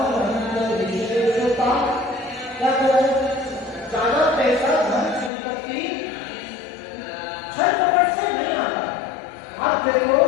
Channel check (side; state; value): right; drops out; at 5.3 s